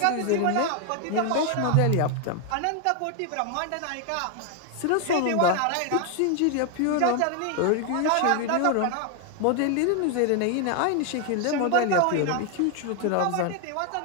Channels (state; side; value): different; both; correlation 0.01